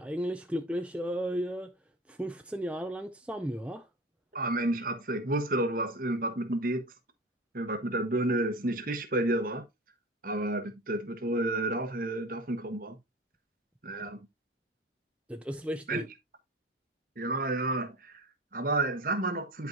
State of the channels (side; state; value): both; normal; correlation 0.35